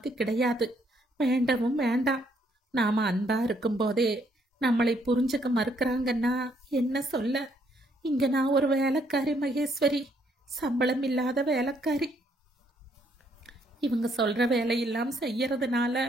கிடையாது. வேண்டவும் வேண்டாம். நாம அன்பா இருக்கும்போதே நம்மளை புரிஞ்சுக்க மறுக்கிறாங்கன்னா என்ன சொல்ல? இங்க நான் ஒரு வேலைக்காரி மகேஸ்வரி, சம்பளம் இல்லாத வேலைக்காரி. இவங்க சொல்ற வேலையெல்லாம் செய்யறதுனால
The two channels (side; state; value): both; normal; correlation 0.70